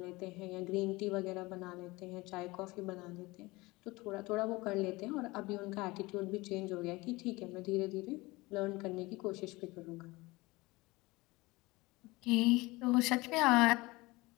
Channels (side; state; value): right; quieter; 22.1 dB